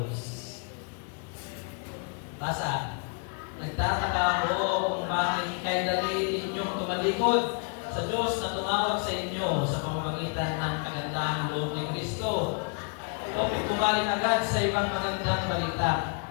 Basa. Nagtataka ako kung bakit kay dali ninyong tumalikod sa Diyos na tumawag sa inyo sa pamamagitan ng kagandahang loob ni Kristo. O pumaling agad sa ibang magandang balita.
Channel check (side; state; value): right; quieter; 39.0 dB